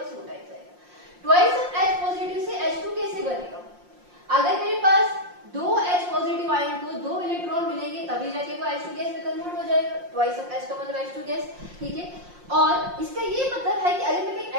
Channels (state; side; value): late; left; 5.6 ms